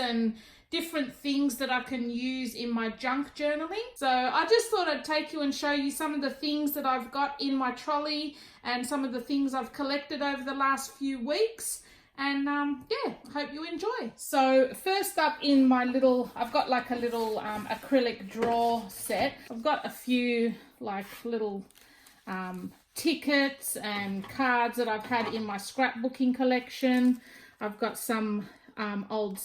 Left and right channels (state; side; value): identical; both; correlation 1.00